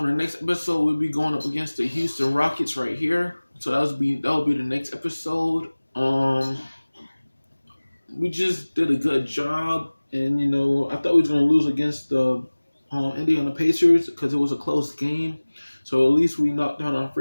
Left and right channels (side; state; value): both; inverted; correlation -1.00